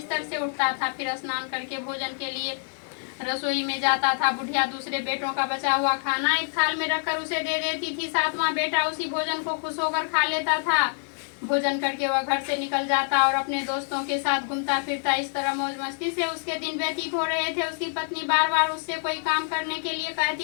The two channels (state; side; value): silent; right; 56 dB below the other